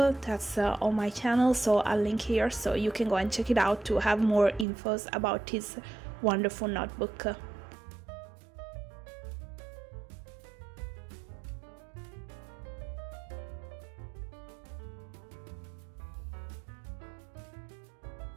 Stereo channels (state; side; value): drops out; left; at 4.7 s